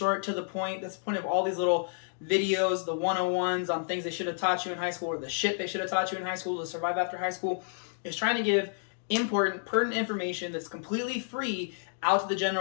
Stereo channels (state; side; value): silent; right; digital silence